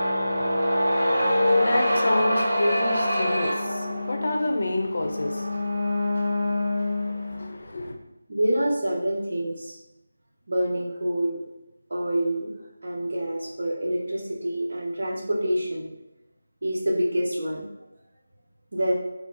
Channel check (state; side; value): inverted; both; correlation -0.94